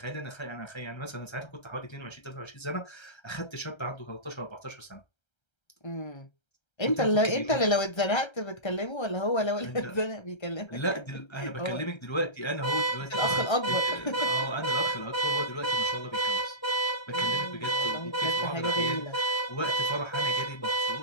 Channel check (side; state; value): right; late; 1.3 ms